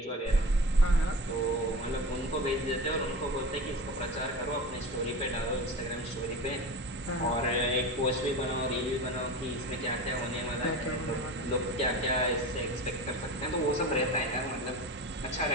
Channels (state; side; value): normal; both; correlation 0.31